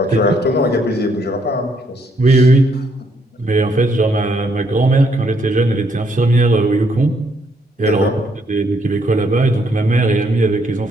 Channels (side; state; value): both; normal; correlation 0.72